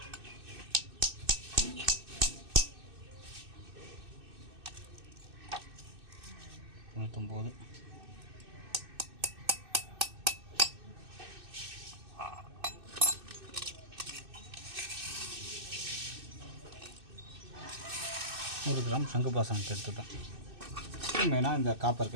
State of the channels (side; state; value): left; late; 2.6 ms